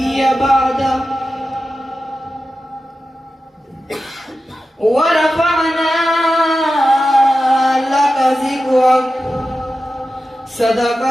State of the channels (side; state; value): both; normal; correlation 0.92